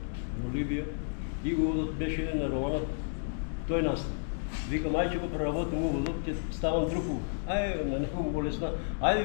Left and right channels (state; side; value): silent; right; digital silence